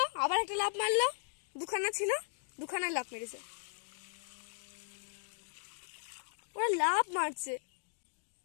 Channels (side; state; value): right; silent; digital silence